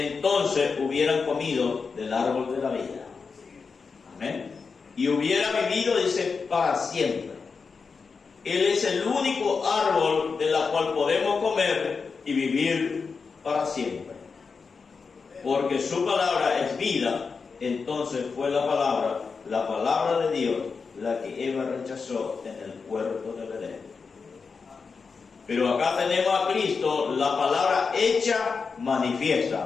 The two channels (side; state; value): right; quieter; 5.1 dB